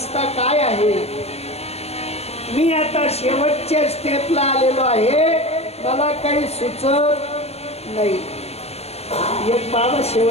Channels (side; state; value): right; late; 0.30 ms